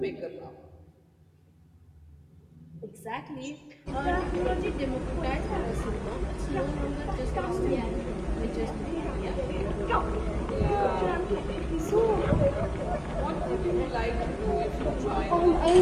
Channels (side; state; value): both; identical; correlation 1.00